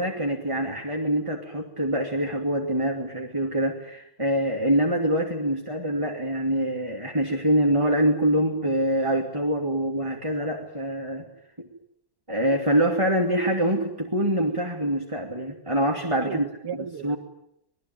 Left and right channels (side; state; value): left; late; 1.1 ms